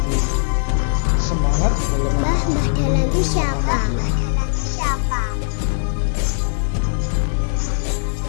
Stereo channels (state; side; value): silent; right; 63 dB below the other